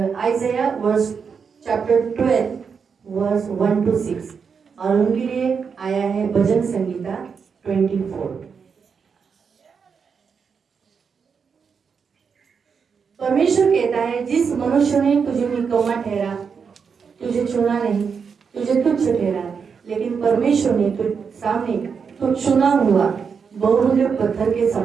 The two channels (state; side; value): quieter; left; 6.1 dB